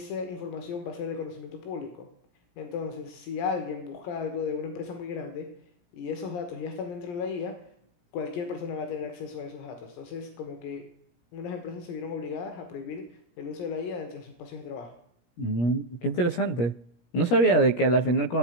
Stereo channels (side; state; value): right; late; 17 ms